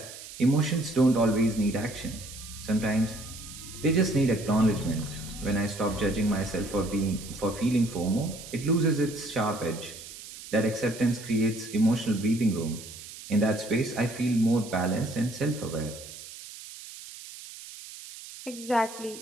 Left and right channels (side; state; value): right; noise; hiss, 14 dB below the sound